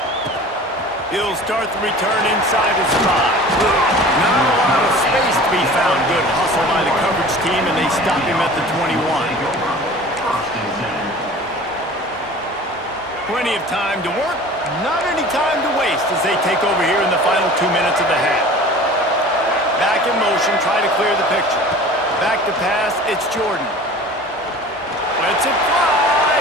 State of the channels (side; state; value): both; normal; correlation 0.42